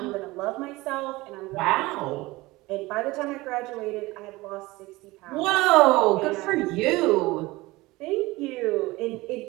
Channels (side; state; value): left; quieter; 20.6 dB